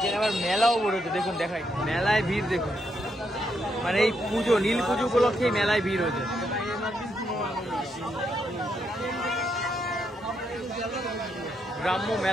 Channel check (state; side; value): normal; both; correlation 0.79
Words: আবার মেলাও বলেছে দেখুন, দেখাই মেলায় ভিড় দেখুন, মানে এই পুজো, নীল পুজো উপলক্ষে মেলায় ভিড় হয়েছে। গ্রাম্য